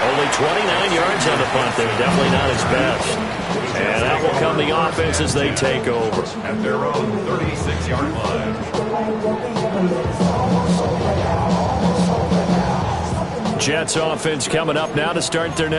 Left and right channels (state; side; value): identical; both; correlation 1.00